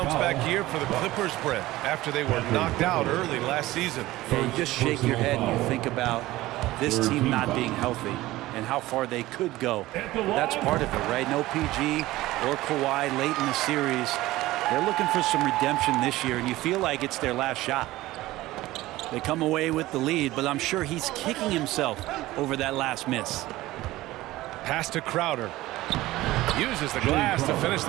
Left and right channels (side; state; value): left; quieter; 17.4 dB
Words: year for the Clippers, Brett, after they were knocked out early last season. Yeah, you just shake your head and you think about this team not being healthy and how far they could go. That's part of it, right? No PG or Kawhi late in the series. They're looking for some redemption this year, and you feel like it's their last shot. They come away with the lead, but I'm sure he's kicking himself over that last miss. Pass to Crowder. Uses the glass to finish